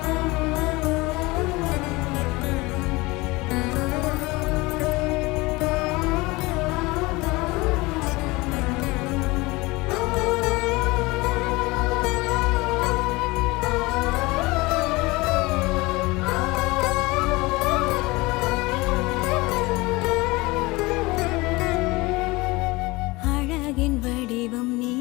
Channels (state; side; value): quieter; right; 22.7 dB